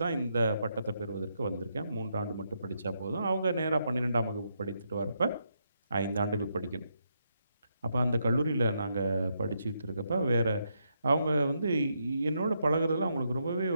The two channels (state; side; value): inverted; both; correlation -0.80